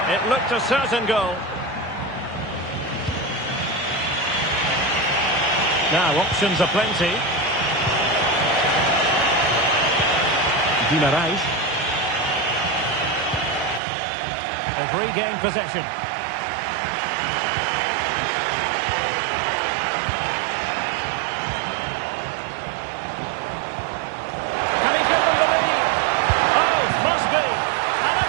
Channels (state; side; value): drops out; left; at 13.8 s